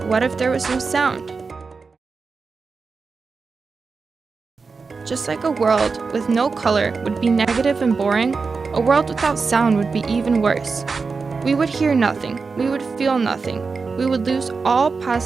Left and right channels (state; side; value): quieter; left; 4.7 dB